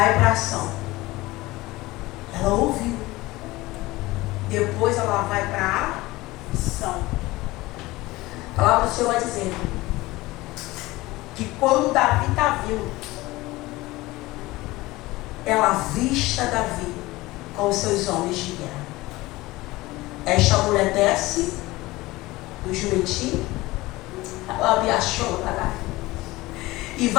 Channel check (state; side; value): quieter; right; 19.7 dB